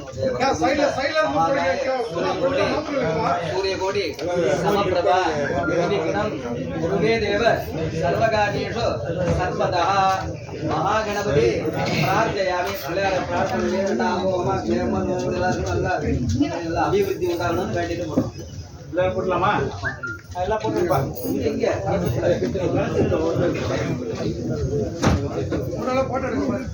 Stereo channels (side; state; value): both; identical; correlation 1.00